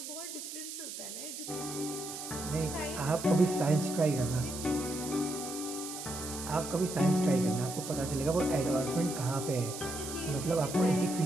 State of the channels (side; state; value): right; noise; hiss, 8 dB below the sound